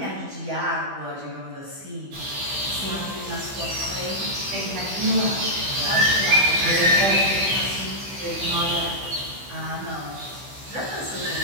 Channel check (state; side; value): late; left; 15 ms